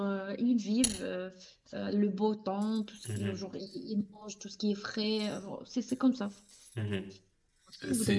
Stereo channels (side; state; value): both; identical; correlation 1.00